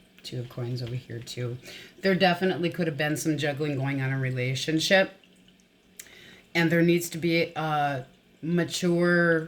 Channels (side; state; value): both; identical; correlation 1.00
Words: Two of Coins over here too. There definitely could have been some juggling going on in a relationship. And there needs to be a mature